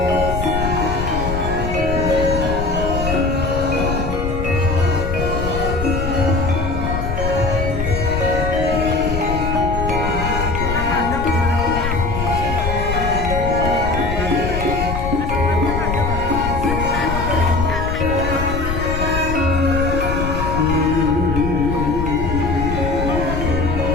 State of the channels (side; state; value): left; noise; rumble, 3 dB below the sound